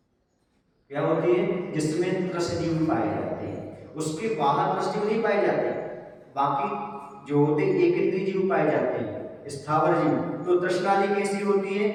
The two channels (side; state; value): both; identical; correlation 1.00